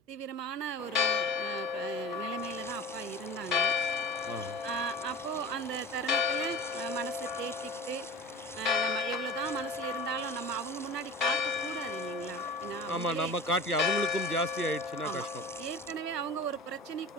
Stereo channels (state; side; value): normal; both; correlation 0.37